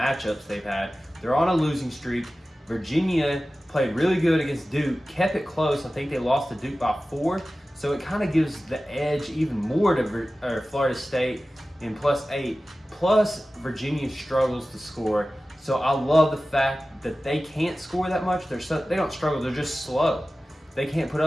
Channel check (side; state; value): both; normal; correlation 0.96